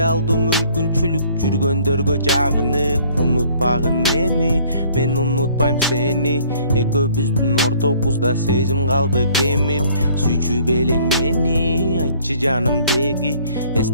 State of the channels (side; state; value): both; inverted; correlation -0.58